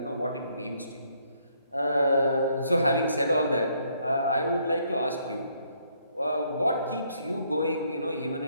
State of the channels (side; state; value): both; inverted; correlation -0.70